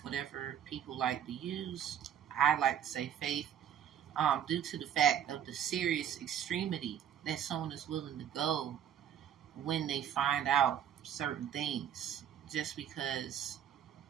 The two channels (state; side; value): quieter; left; 9.5 dB